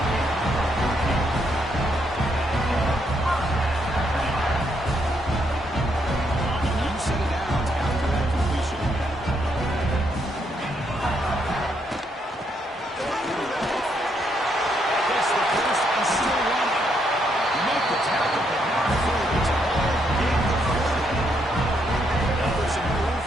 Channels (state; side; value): normal; both; correlation 0.76